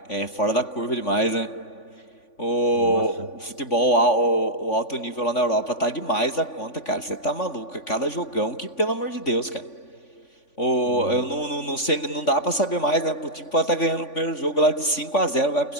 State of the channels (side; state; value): right; late; 3.5 ms